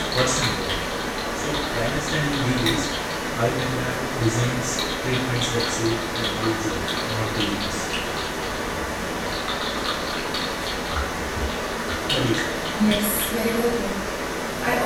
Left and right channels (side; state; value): both; identical; correlation 1.00